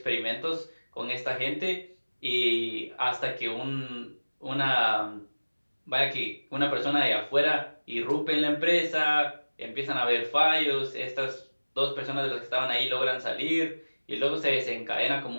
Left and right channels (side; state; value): both; inverted; correlation -1.00